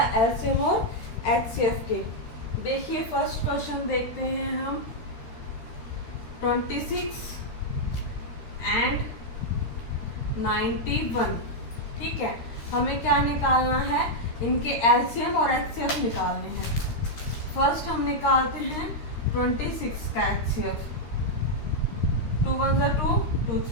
एलसीएम और एचसीएफ के। देखिए फर्स्ट क्वेश्चन देखते हैं हम, 26 एंड 91। ठीक है, हमें क्या निकालना है, इनके एलसीएम और एचसीएफ निकालने हैं। फर्स्ट हम निकालते हैं 26 का एचसीएफ। 2 1 जा 2, 2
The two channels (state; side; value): late; right; 13 ms